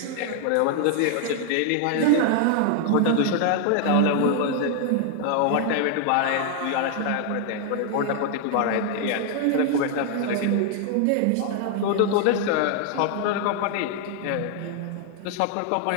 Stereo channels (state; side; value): different; both; correlation 0.00